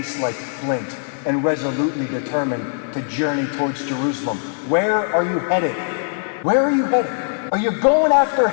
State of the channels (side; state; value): right; silent; 65 dB below the other